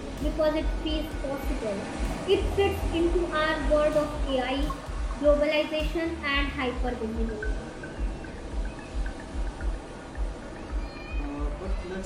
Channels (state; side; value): identical; both; correlation 1.00